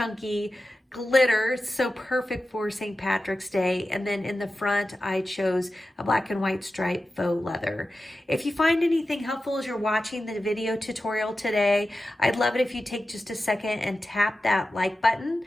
glitter, so perfect for St. Patrick's Day. And then in the front, I chose a black and white striped faux leather. If you find anything helpful as you're watching the video tutorial today, I'd love it if you take just a second and tap that like button,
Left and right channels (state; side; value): normal; both; correlation 0.93